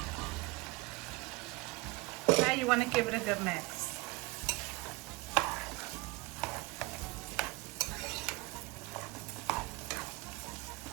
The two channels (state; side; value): quieter; left; 22.6 dB